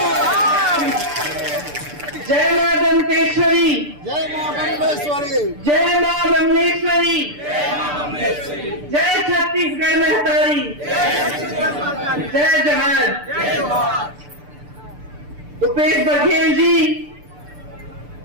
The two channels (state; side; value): late; left; 6.8 ms